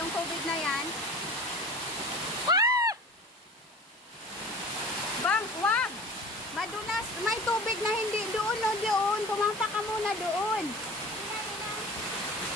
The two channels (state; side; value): normal; both; correlation 0.39